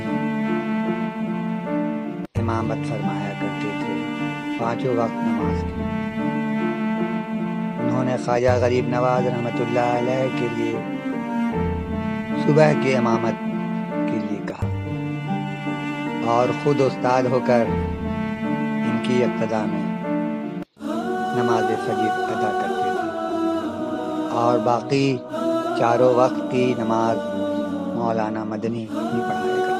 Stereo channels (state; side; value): identical; both; correlation 1.00